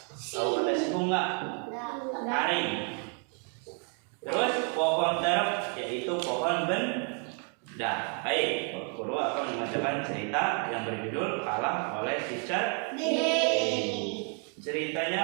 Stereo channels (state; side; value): quieter; left; 39.4 dB